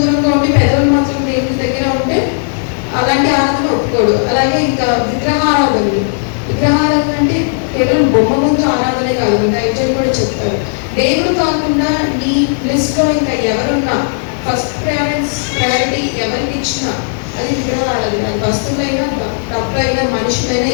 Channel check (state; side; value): silent; right; digital silence